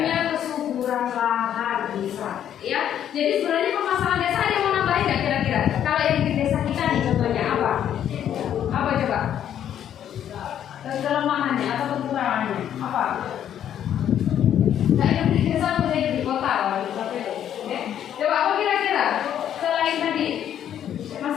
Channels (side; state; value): right; quieter; 10.1 dB